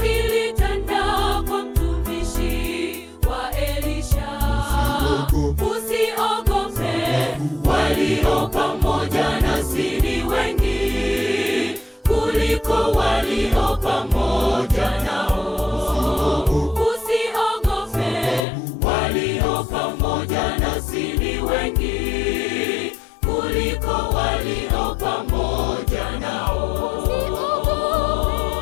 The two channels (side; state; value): right; drops out; at 18.4 s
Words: ilitanda kwa mtumishi wa Elisha. Usiogope, walio pamoja nasi ni wengi kuliko walio pamoja nao. Usiogope, walio pamoja nasi ni wengi kuliko walio pamoja nao.